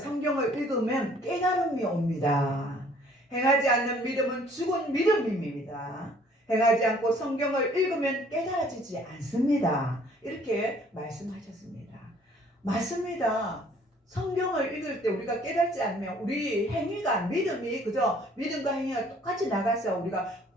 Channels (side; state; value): both; normal; correlation 0.58